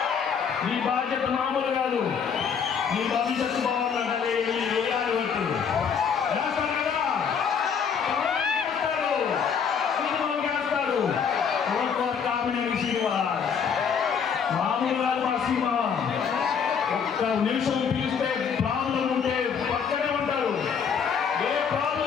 మీ బాధ్యత మామూలు కాదు. మీ భవిష్యత్తు బాగుండాలి. వేయాలి ఓటు. వేస్తారు కదా, సినిమాలు వేస్తారు. కామినేని శ్రీనివాస్ మామూలు కాదు. మా సినిమా ఒక్క నిమిషం పిలిస్తే ప్రాబ్లం ఉంటే పక్కనే ఉంటారు. ఏ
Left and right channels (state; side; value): quieter; right; 6.8 dB